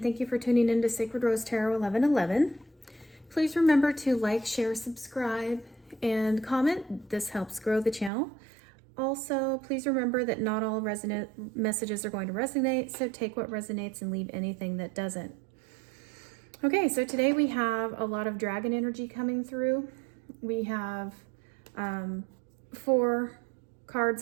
thank you for tuning in to Sacred Rose Tarot 1111. Please remember to like, share, subscribe, and comment. This helps grow the channel. Also, please remember that not all messages are going to resonate, so take what resonates and leave anything that doesn't. Okay, so today we have a lot of dragon energy coming through. We have 4 cards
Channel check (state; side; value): drops out; left; at 8.1 s